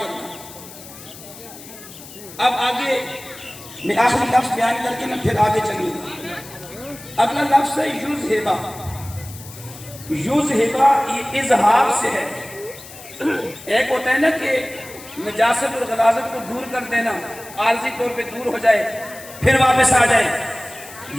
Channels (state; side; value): noise; left; hiss, 17 dB below the sound